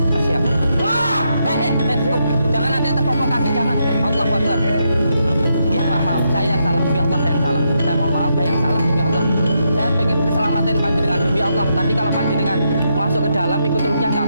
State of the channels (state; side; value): inverted; both; correlation -0.80